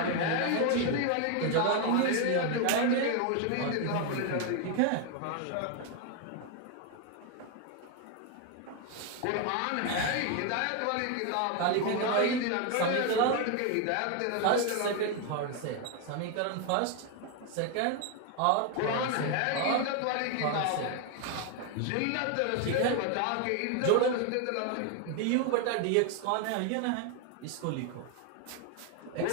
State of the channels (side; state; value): both; different; correlation 0.01